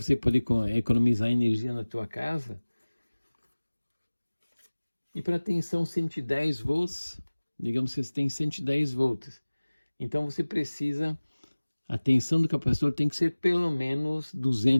poder economizar energia na tua casa. E para tensão 110 volts, digamos que você tem 110 volts. Então você precisa, a tensão do capacitor tem que ser pelo menos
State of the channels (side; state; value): both; inverted; correlation -1.00